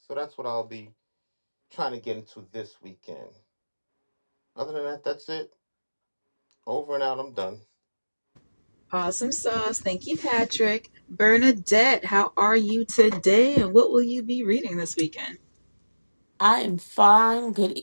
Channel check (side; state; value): both; inverted; correlation -1.00